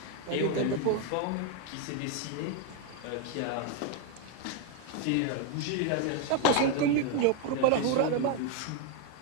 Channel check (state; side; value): different; both; correlation 0.01